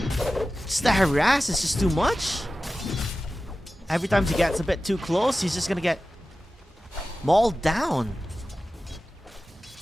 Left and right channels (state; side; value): normal; both; correlation 0.95